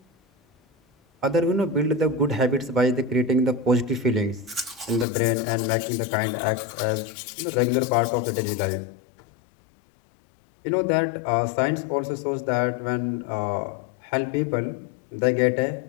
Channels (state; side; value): drops out; right; at 5.1 s